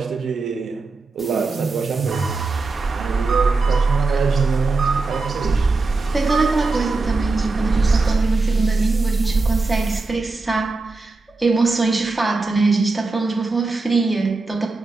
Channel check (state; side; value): quieter; left; 3.7 dB